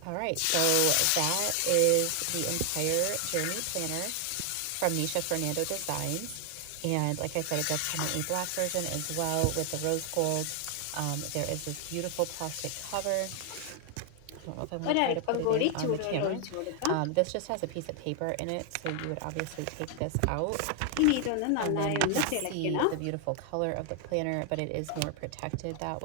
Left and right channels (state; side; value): different; both; correlation 0.00